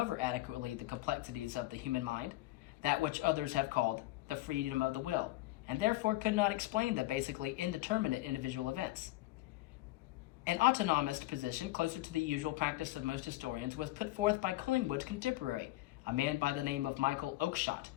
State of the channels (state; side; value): quieter; right; 18.0 dB